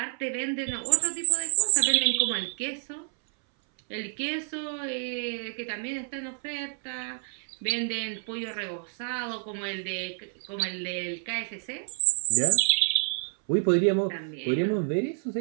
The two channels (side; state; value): left; silent; 59 dB below the other